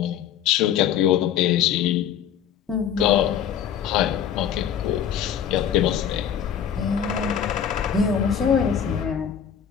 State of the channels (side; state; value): right; quieter; 8.9 dB